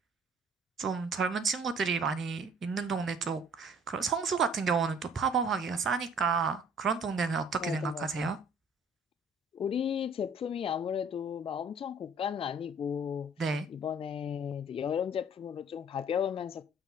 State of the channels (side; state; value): both; normal; correlation 0.54